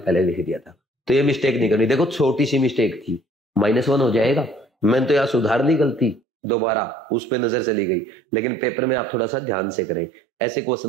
लिख दिया था, तो ये मिस्टेक नहीं करनी। देखो छोटी सी मिस्टेक थी, -1 हो जाएगा, मैंने तो यहाँ सुधार ली गलती, दोबारा उस पे नजर चली गई, लेकिन पेपर में आप थोड़ा सा ध्यान से करें, ऐसे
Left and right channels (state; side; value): drops out; left; at 6.2 s